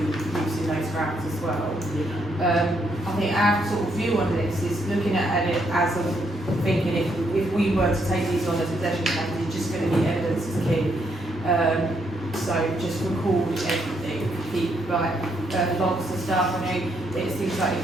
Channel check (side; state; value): both; normal; correlation 0.75